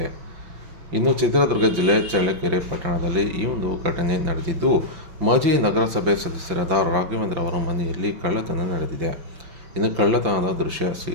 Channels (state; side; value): late; left; 5.8 ms